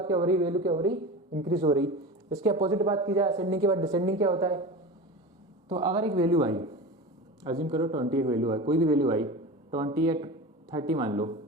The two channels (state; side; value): normal; both; correlation 0.30